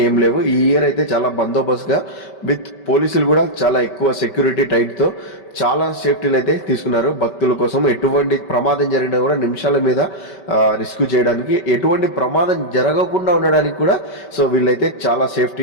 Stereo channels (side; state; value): right; late; 5.2 ms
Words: ఏం లేవు. ఈ ఇయర్ అయితే చాలా బందోబస్తు గా విత్ పోలీసులు కూడా చాలా ఎక్కువ సెక్యూరిటీ టైట్ తో చాలా సేఫ్టీలు అయితే తీసుకున్నారు భక్తుల కోసం. ఎటువంటి ప్రమాదం జరిగినా కూడా నిమిషాల మీద రిస్క్ చేయడానికి, ఎటువంటి ప్రమాదం జరగకుండా ఉండడానికి కూడా సో వీళ్ళైతే చాలా